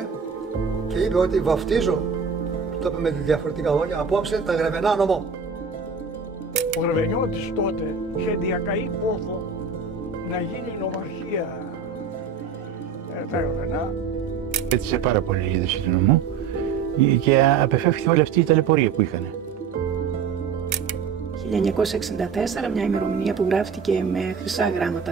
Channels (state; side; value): quieter; left; 5.9 dB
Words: και είπε ότι βαφτίζω, το είπε με διαφορετικά λόγια, απόψε τα Γραβενά νομό. Ο Γραβενιώτης τότε είχε διακαεί πόθο να γίνει νομαρχία τα Γραβενά. Έτσισε πάρα πολύ η είδηση του νομού και απεφεύχθηκε όλη αυτή η ταλαιπωρία που είχαν. 1964, μια ημερομηνία που γράφτηκε με χρυσά